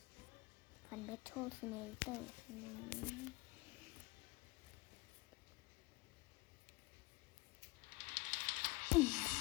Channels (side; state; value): right; quieter; 23.1 dB